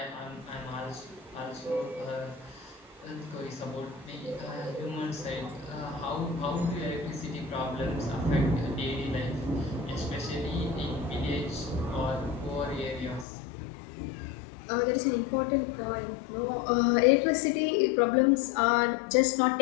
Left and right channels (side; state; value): right; drops out; at 13.2 s